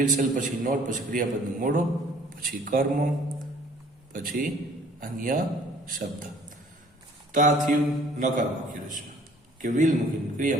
શેલ પછી નોટ પછી ક્રિયાપદનું મૂળરૂપ પછી કર્મ પછી અન્ય શબ્દ. તો આ થયું નકાર વાક્ય રચના કે વિલ મૂકીને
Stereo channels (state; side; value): normal; both; correlation 0.55